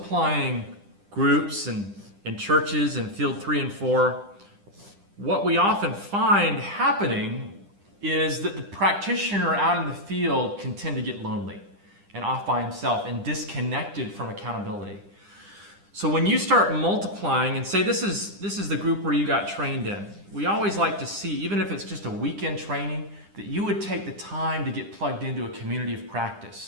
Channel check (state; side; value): late; left; 10 ms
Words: groups and churches in field 3 and 4, what we often find happening is that the practitioner out in the field can tend to get lonely and off by himself and disconnected from accountability. So when you start multiplying and say this is the group where you got trained in, we always like to see, even if it's just a weekend training, that you would take the time to get plugged into a community of